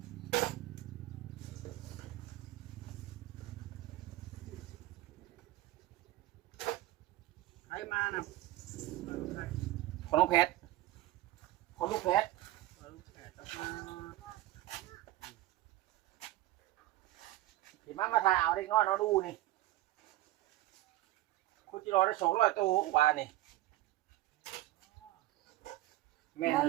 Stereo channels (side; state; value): left; quieter; 16.1 dB